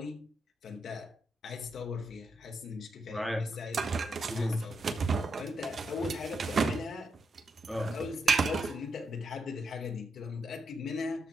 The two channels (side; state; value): both; normal; correlation 0.81